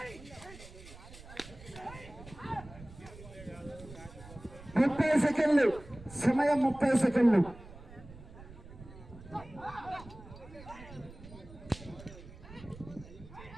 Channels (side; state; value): right; noise; rumble, 17 dB below the sound